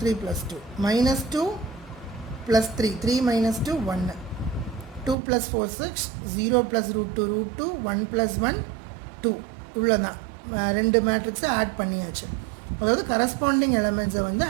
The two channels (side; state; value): left; drops out; at 5.2 s